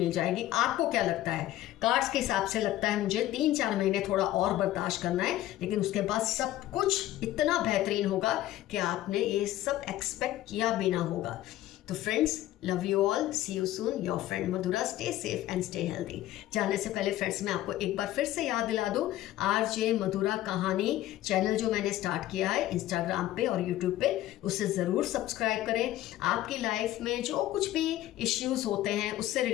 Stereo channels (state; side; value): quieter; right; 14.4 dB